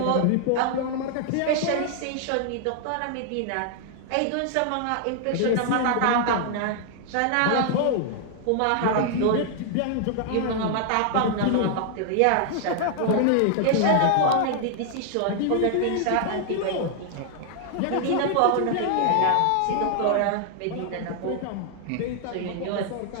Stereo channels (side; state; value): both; different; correlation 0.00